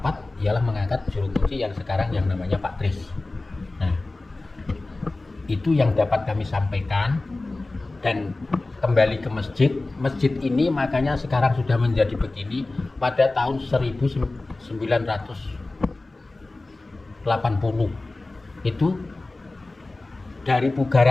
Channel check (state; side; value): quieter; right; 3.1 dB